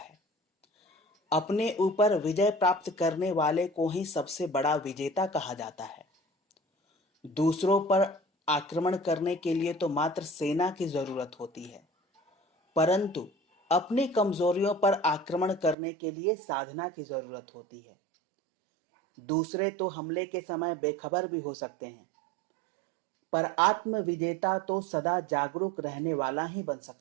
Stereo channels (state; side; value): drops out; left; at 15.8 s